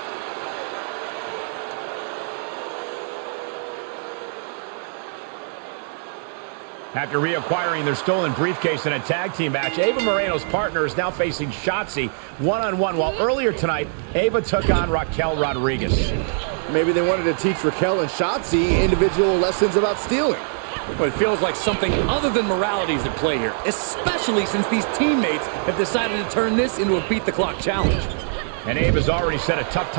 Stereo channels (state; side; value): silent; left; digital silence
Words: After reacquiring their stolen briefcase in a tag team match, Ava Moreno's partner is now facing Shotzi one-on-one, while earlier tonight, Ava took on Raquel Rodriguez. Maybe they wanted to teach Raquel and Shotzi individual lessons about stealing. But it feels like something other than morality is at play here, especially since these teammates have decided to turn this into a beat-the-clock challenge. And Ava's already set a tough